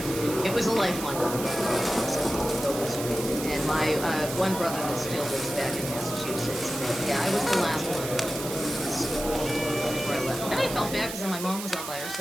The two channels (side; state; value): right; noise; hiss, 8 dB below the sound